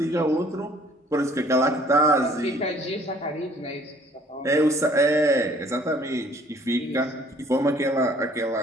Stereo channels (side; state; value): both; normal; correlation 0.57